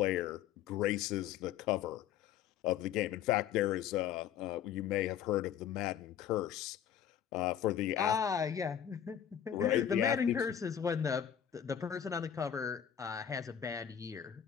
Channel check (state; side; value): quieter; right; 9.5 dB